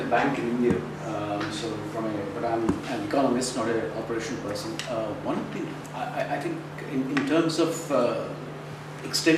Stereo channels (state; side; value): identical; both; correlation 1.00